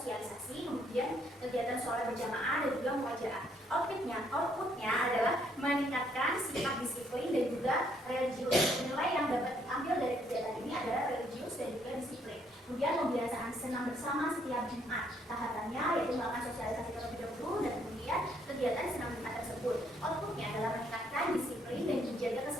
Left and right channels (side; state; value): both; normal; correlation 0.69